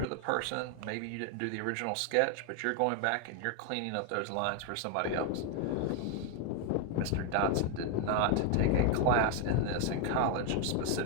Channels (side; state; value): both; different; correlation 0.01